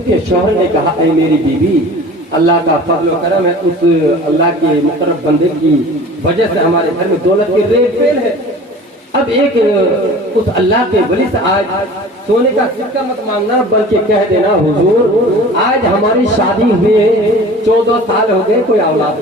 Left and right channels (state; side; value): normal; both; correlation 0.42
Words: کے شوہر نے کہا اے میری بیوی اللہ کا فضل و کرم ہے، اس اللہ کے مقرب بندے کی وجہ سے ہمارے گھر میں دولت کی ریل پیل ہے. اب ایک اس اللہ کے ولی سے آج سونے کا سکہ مت مانگنا بلکہ کہہ دینا حضور آج ہماری شادی ہوئے 14 سال ہو گئے، کوئی اولاد